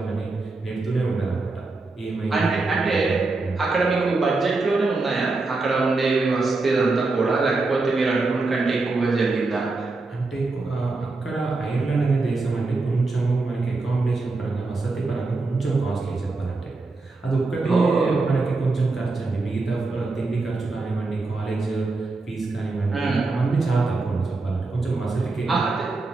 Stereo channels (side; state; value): left; quieter; 3.5 dB